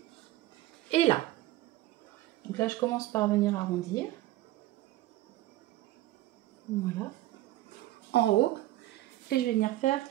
et là. Donc là, je commence par venir arrondir. Voilà. En haut. Et je vais venir faire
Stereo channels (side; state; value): left; quieter; 15.9 dB